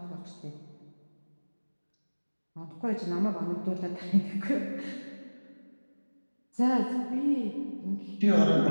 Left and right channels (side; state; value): both; inverted; correlation -1.00